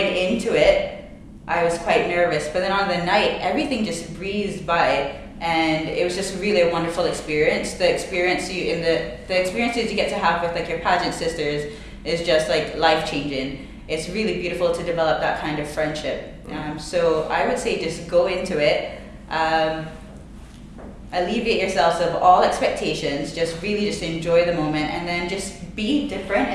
into it, I was quite nervous, but then on the night, everything just breezed by, and it was just really a wonderful experience. The experiences you get to have with like your pageant sisters is just like life changing. It's really beautiful to develop that kind of friendship. So I would say just go into it. Alleviate yourselves of all expectations, just enjoy the moment, and then just be different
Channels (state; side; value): identical; both; correlation 1.00